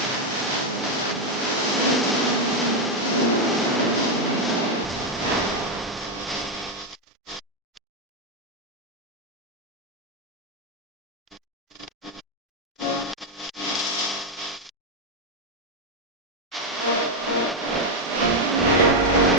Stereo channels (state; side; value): normal; both; correlation 0.04